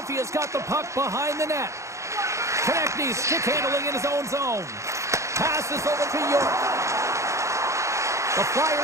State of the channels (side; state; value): left; late; 0.14 ms